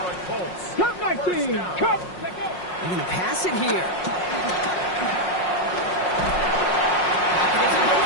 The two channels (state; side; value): late; right; 5.5 ms